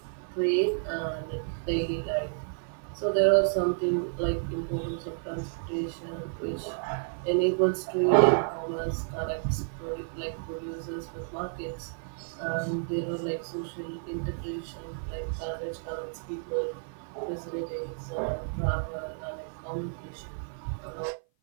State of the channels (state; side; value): silent; left; 55 dB below the other